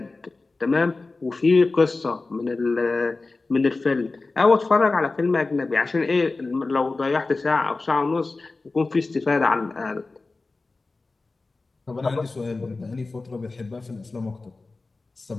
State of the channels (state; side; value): quieter; right; 3.6 dB